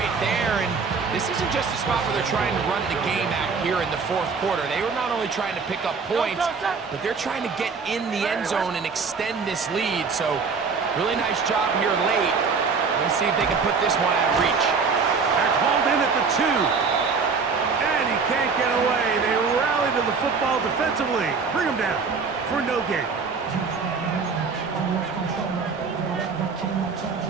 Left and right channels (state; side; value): quieter; left; 5.1 dB